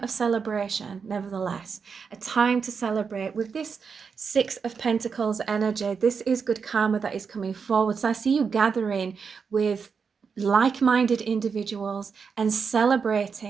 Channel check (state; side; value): quieter; left; 5.8 dB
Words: of celebration, nevertheless. A time to celebrate. With this 6 of Pentacles energy, this is good karma that is coming forward. So I see you gathering with like-minded individuals and